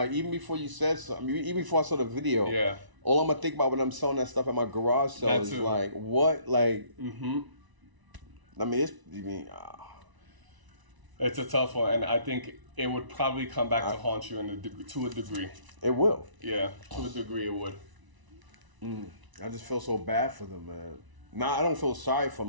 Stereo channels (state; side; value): late; left; 1.0 ms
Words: even before you said something, even before I saw the video, all I'm going to think about when I'm selling that stuff at my garage sale is like, what? Like, I mean, it's a tough one, and I think it would probably come back to haunt you to a degree. It will. Yeah, to a degree it would. I just feel so bad for them, man. Nah, I don't feel sorry for them.